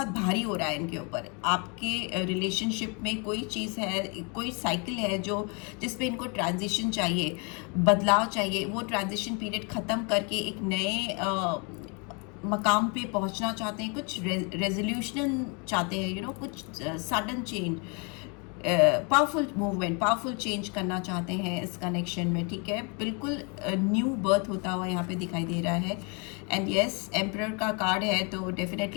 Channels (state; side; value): quieter; right; 33.8 dB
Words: भारी हो रहा है इनके ऊपर। आपके रिलेशनशिप में कोई चीज़ है, कोई साइकिल है जो जिसपे इनको ट्रांजिशन चाहिए, बदलाव चाहिए। वो ट्रांजिशन पीरियड ख़त्म करके एक नए मकाम पे पहुंचना चाहते हैं, कुछ रेजोल्यूशन चाहते हैं, कुछ sudden change, powerful movement, powerful change करना चाहते हैं इस कनेक्शन में, ठीक है। बिल्कुल न्यू बर्थ होता हुआ यहाँ पे दिखाई दे रहा है। एंड यस, एम्परर का कार्ड है, तो